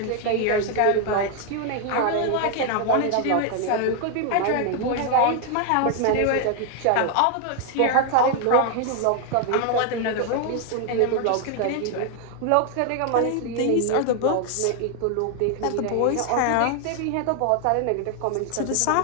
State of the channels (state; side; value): different; both; correlation 0.00